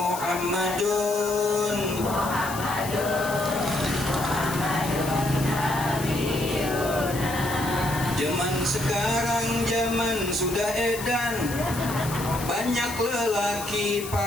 Zaman sekarang zaman sudah edan, banyak lelaki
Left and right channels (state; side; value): noise; left; hiss, 10 dB below the sound